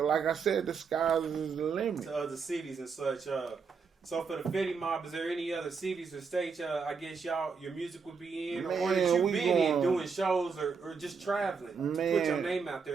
I said, the sky is the limit. To other cities and such. So for the Feddi mob, is there any other cities or states? I guess your music would be in, or that you been in doing shows or just traveling. Man, put your name out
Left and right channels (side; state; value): left; quieter; 5.5 dB